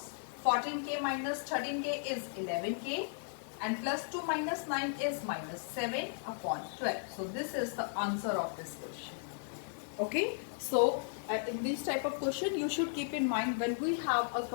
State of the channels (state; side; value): silent; right; 54 dB below the other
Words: 14k minus 13k is 11k and plus 2 minus 9 is minus 7 upon 12. So this is the answer of this question. Okay, so in this type of question you should keep in mind, when we have a